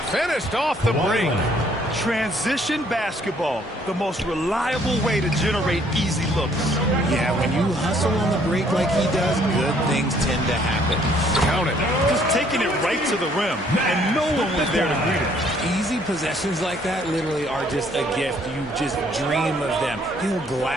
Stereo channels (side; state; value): both; normal; correlation 0.63